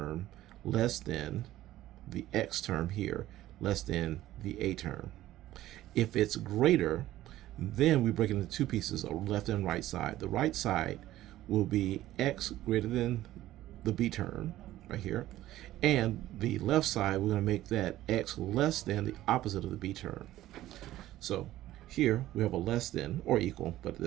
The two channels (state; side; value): quieter; left; 14.7 dB